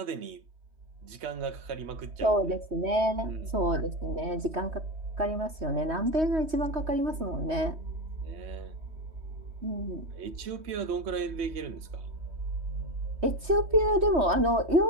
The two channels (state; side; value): late; left; 3.2 ms